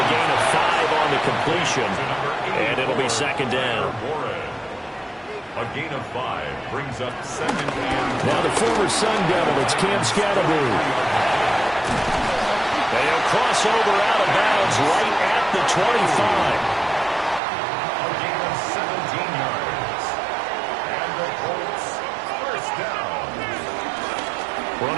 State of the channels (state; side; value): drops out; left; at 17.4 s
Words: gain of 5 on the completion, and it'll be 2nd down. A gain of 5 brings up 2nd and... Now the former Sun Devil, it's Cam Scatterby. They'll cross over out of bounds right at the 25. A gain of 17 yards. And the Colts, first down.